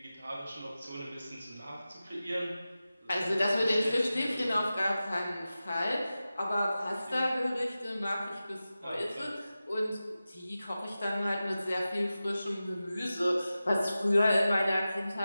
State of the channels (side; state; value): both; inverted; correlation -0.95